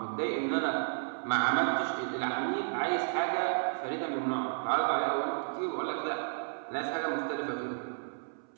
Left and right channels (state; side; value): silent; left; 56 dB below the other